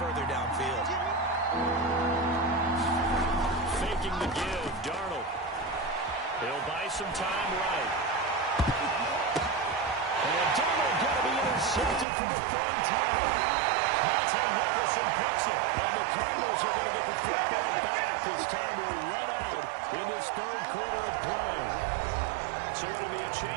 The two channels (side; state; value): left; drops out; at 12.1 s